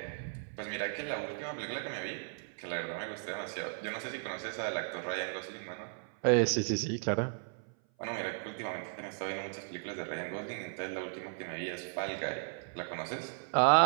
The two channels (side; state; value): left; silent; 54 dB below the other